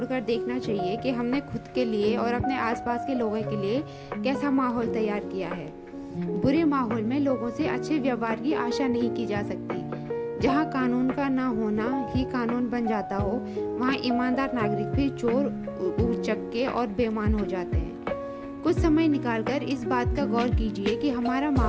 देखना चाहिए कि हमने खुद के लिए और अपने आसपास के लोगों के लिए कैसा माहौल तैयार किया है। बुरे माहौल में लोगों से अच्छे व्यवहार की आशा नहीं की जा सकती। जहाँ कानून का ना होना ही कानून बन जाता हो, वहाँ ईमानदार नागरिक भी चोर, उचक्के और बेईमान हो जाते हैं। कुछ समय निकालकर इस बात का गौर कीजिए कि हमारा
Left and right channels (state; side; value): identical; both; correlation 1.00